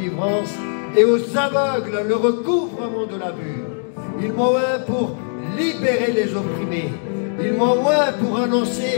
et aux aveugles le recouvrement de la vue. Il m'a oint pour libérer les opprimés. Il m'a oint pour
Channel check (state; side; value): silent; right; digital silence